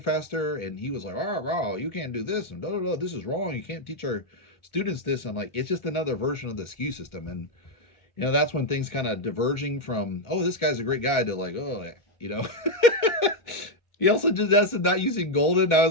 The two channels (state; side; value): late; right; 2.1 ms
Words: faster. And he was like, oh, you can't do this. And this is wrong. You can't teach our students this. I'm like, it's just another version of the SKU system. And, that's when things kind of diverging from, oh, this guy's a great guy, to like, oh, He also suggested not using golden. I